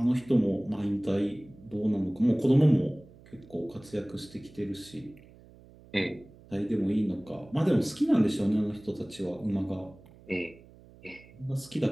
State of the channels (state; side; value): noise; right; hum, 23 dB below the sound